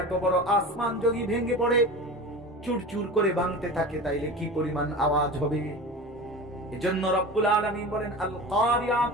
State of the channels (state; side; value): normal; both; correlation 0.32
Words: এত বড় আসমান যদি ভেঙে পড়ে, চুরচুর করে ভাঙতে থাকে, তাইলে কি পরিমাণ আওয়াজ হবে? এজন্য রব্বুল আলামিন বলেন আল